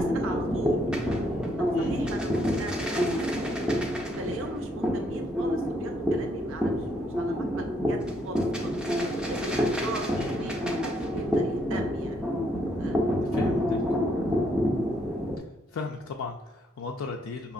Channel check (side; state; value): both; normal; correlation 0.72